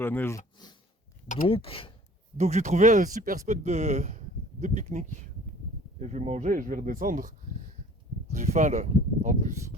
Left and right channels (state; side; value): normal; both; correlation 0.49